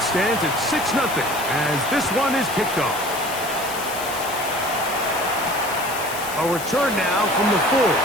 stands at 6-0 as this one is kicked off. A return now from the 4. A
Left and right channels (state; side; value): noise; left; hiss, 10 dB below the sound